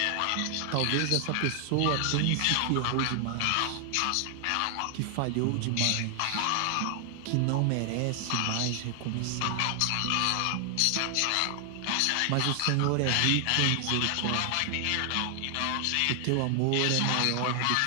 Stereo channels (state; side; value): different; both; correlation 0.00